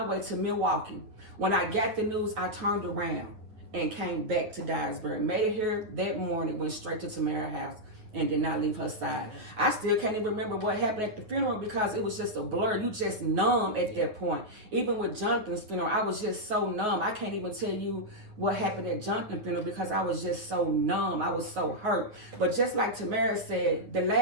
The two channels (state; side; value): late; left; 9.7 ms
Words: way to Milwaukee. When I got the news, I turned around and came back to Dyersburg. Made it here that morning, went straight to Tamara's house. and did not leave her side. I still can't even remember what happened at the funeral because it was just a blur. You just numb at that point. Even with Jonathan's funeral, I was just so numb. I can't even tell you what happened at Jonathan's funeral because I was just so numb. I was so hurt. But just like Tamara said, the